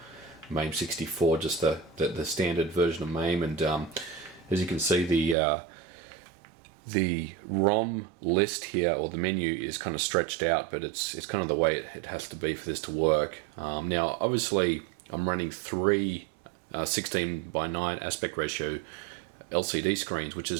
64, just the standard version of MAME. And as you can see, the ROM list here, or the menu, is kind of stretched out, but it's kind of the way it has to be for this to work. Now, obviously, I'm running 3 16:9 aspect ratio LCD screens, which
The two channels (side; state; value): left; drops out; at 5.4 s